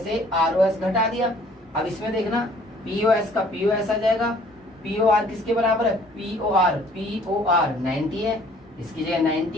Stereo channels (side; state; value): both; normal; correlation 0.57